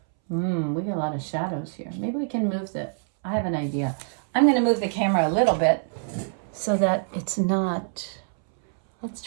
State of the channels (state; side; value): silent; left; 62 dB below the other